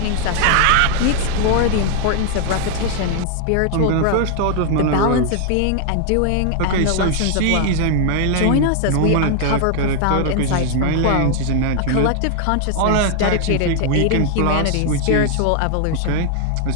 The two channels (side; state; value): both; different; correlation 0.00